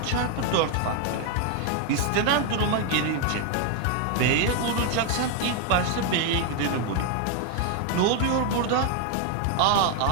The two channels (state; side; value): different; both; correlation 0.01